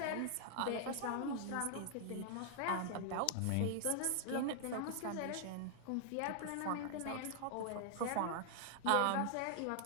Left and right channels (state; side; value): different; both; correlation -0.01